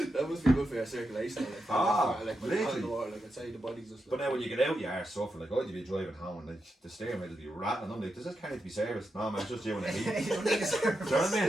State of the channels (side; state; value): both; normal; correlation 0.86